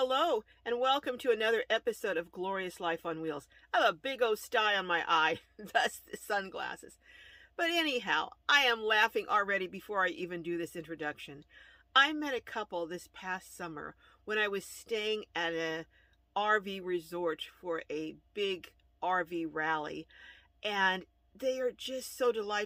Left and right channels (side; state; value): both; identical; correlation 1.00